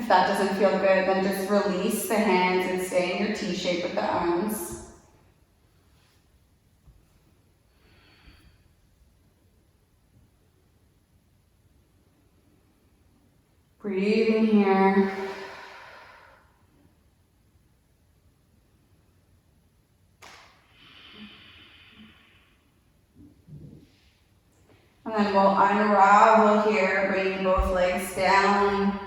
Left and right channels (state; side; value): identical; both; correlation 1.00